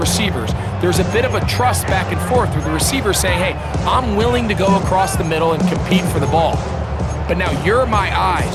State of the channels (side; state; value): both; identical; correlation 1.00